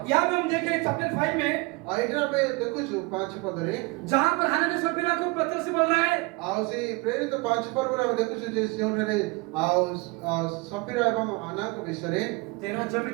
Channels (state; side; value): quieter; left; 26.1 dB